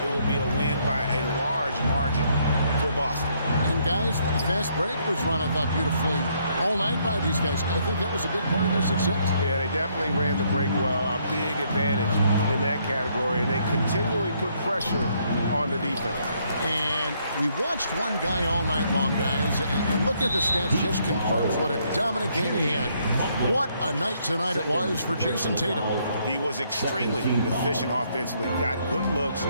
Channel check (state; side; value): inverted; both; correlation -0.70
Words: it will be a win by a large margin for Boston. And guys, the fast break was run, I thought, beautifully all night by these guys. I think that was a big part of their success. Yeah, they definitely ran the break well. A big advantage in that category. And they continually put pressure on the defense. And we watched one guy all night long, guys, and look at the stats, just confirms what a dominant game he had. What a night tonight it was for Jason Tatum. He was extremely efficient offensively, got good looks,